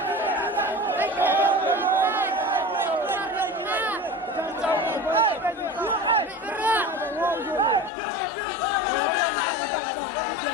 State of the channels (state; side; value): drops out; right; at 7.9 s